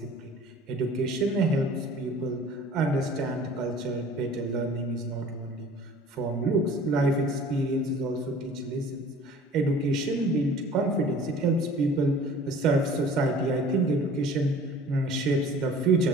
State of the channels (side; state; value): both; normal; correlation 0.47